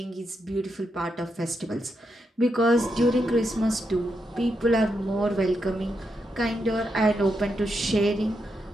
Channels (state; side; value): normal; both; correlation 0.83